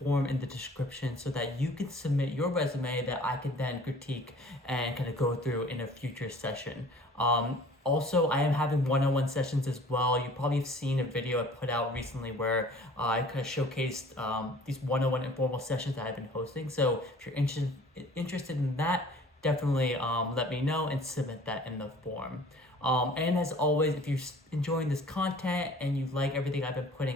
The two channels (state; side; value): normal; both; correlation 0.50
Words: in the description so that you can submit your resume that I can then critique and kind of go through in a future session. Also, I am having one-on-one sessions as well. You probably have seen a video I put out recently where I kind of showcased these one-on-one informal sessions that I've been hosting. So if you're interested in that, definitely let me know and submit that in the form. And as always, if you're enjoying this content and you like everything I've been